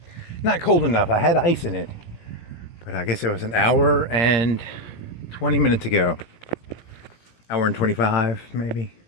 Not cold enough. I had ice in it. But I guess it was an hour and 20 minutes ago. Hour and 25, maybe.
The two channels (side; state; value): right; late; 17 ms